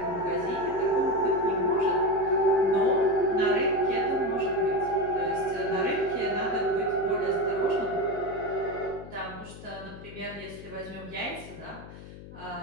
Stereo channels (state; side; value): noise; left; hum, 15 dB below the sound